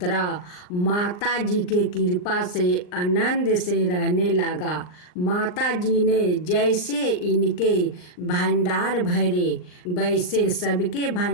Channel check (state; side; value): late; right; 39 ms